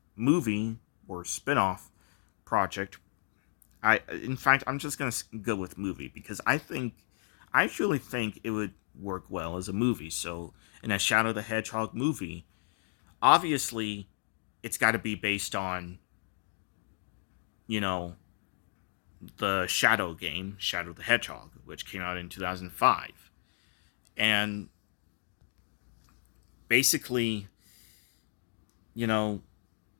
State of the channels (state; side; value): silent; right; digital silence